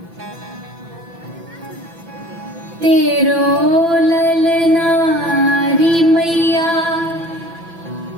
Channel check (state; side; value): late; left; 6.0 ms